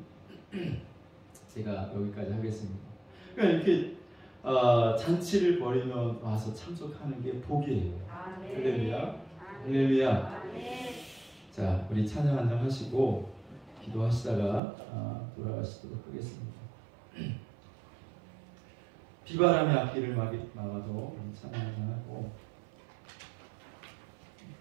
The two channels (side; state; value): left; drops out; at 14.6 s